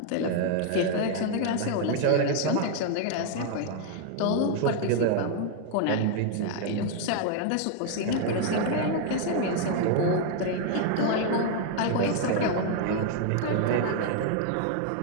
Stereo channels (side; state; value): both; different; correlation 0.00